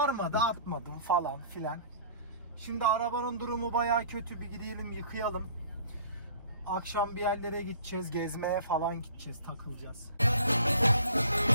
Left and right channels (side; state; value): both; inverted; correlation -0.49